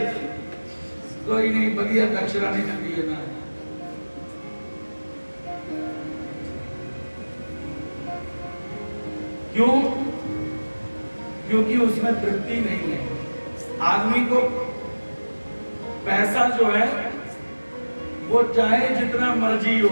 कोई नहीं, बढ़िया दक्षिणा नहीं करती है ना। क्यों? क्योंकि उसमें तृप्ति नहीं है। आदमी को पैसा जो है वो चाहे जितना मर्जी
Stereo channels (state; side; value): inverted; both; correlation -1.00